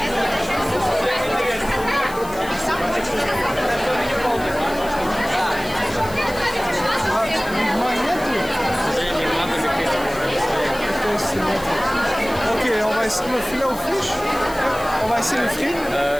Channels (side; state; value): left; noise; hiss, 17 dB below the sound